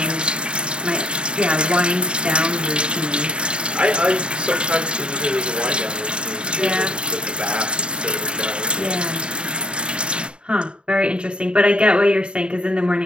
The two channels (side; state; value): left; late; 0.053 ms